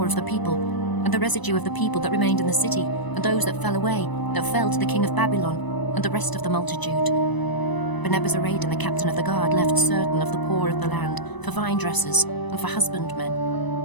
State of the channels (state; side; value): late; right; 1.0 ms